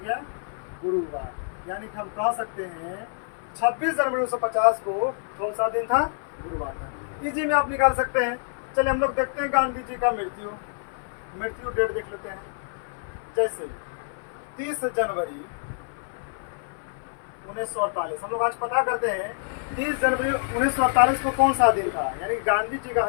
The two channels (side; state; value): right; silent; 56 dB below the other